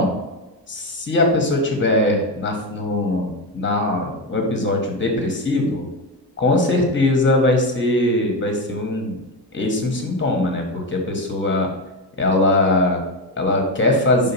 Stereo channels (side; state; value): both; normal; correlation 0.13